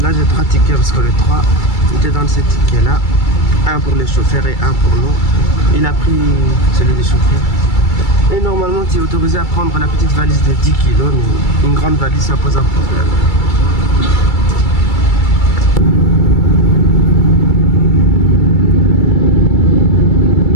Là j'ai 3 tickets parce que les 3, il te donne ces tickets là, un pour les chauffeurs et un pour nous. Il a pris celui des chauffeurs et normalement tu es autorisé à prendre la petite valise de 10 kilos, mais une grande valise ça pose un problème.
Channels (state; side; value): late; right; 2.3 ms